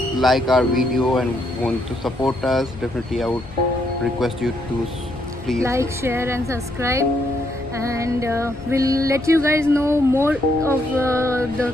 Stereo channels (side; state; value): left; noise; rumble, 18 dB below the sound